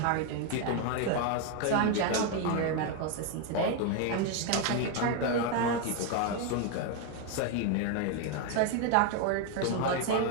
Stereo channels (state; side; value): different; both; correlation 0.01